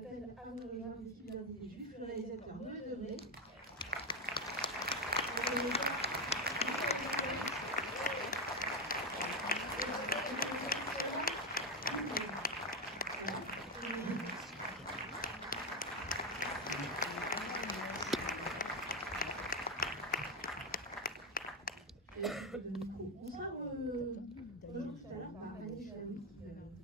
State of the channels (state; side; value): normal; both; correlation 0.08